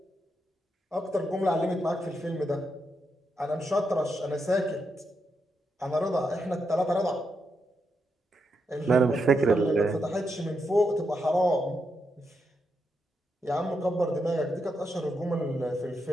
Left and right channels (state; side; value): normal; both; correlation 0.83